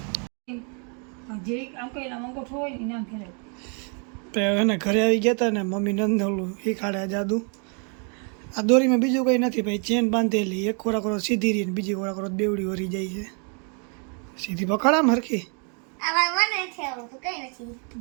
એને ઘરે આવી ગયા હતા ને મમ્મી નંદોલું શીખાડે જાદુ. આ દોરીમાં બીજું કંઈ નથી ભાઈ. ચેન બાંધેલી એક ખોરાક સીધી રહી ને બીજી ખોરાક બેવડી વરી જાય છે. સીધી પકડામ હરખી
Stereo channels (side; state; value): left; quieter; 39.1 dB